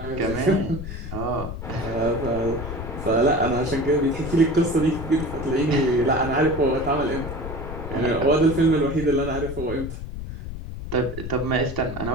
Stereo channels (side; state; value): left; noise; rumble, 8 dB below the sound